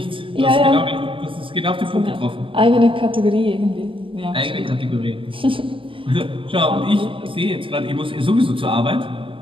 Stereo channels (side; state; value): left; late; 0.25 ms